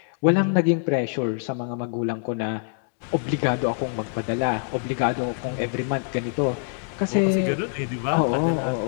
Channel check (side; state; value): right; silent; digital silence